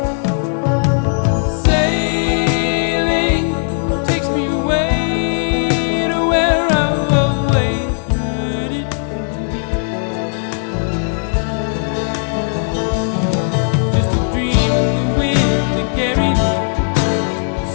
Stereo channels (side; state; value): right; silent; 60 dB below the other